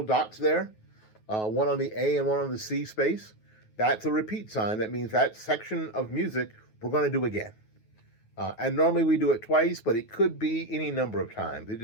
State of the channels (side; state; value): right; late; 9.3 ms